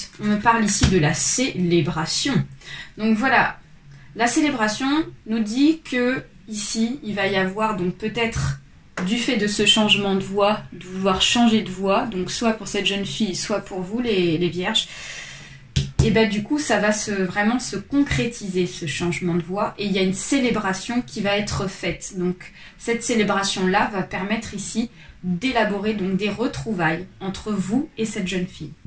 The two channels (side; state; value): both; identical; correlation 1.00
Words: on me parle ici de la célébration. Donc voilà, la célébration nous dit que ici, il va y avoir donc peut-être du fait de ce changement de voix, de vouloir changer de voix, donc soit pour cette jeune fille, soit pour vous les vierges, et bien du coup ça va vraiment se concrétiser ce changement de voix et il y a une célébration qui va être faite. Donc cette célébration là va permettre ici d'élaborer donc des retrouvailles entre vous et cette jeune fille.